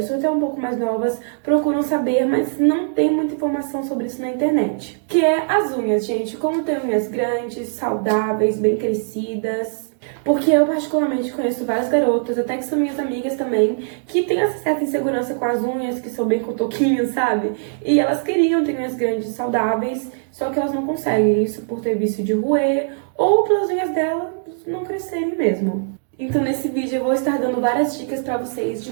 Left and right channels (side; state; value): left; silent; digital silence